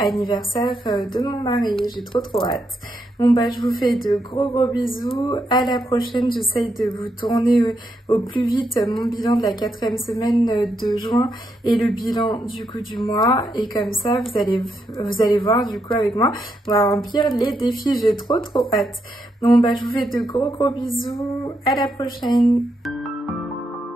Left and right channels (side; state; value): both; normal; correlation 0.81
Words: de mon mari. J'ai trop hâte. Bon bah je vous fais de gros bisous, à la prochaine, j'essaye de vous tourner au plus vite mon bilan de la 4e semaine de juin et le bilan du coup du mois, et comme ça vous allez voir du coup avec moi, on va remplir les défis, j'ai trop hâte. Bon bah je vous fais de gros bisous, à la prochaine.